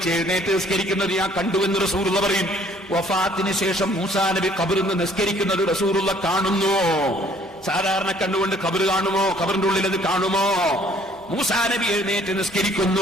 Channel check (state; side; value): normal; both; correlation 0.59